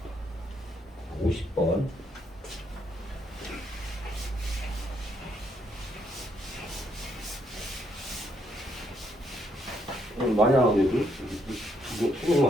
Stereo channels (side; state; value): both; normal; correlation 0.74